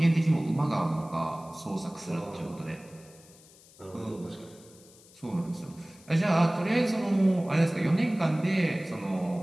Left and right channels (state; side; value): noise; left; hiss, 25 dB below the sound